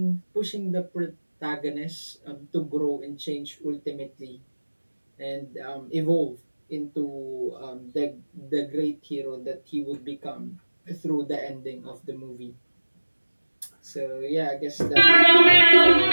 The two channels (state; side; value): inverted; both; correlation -1.00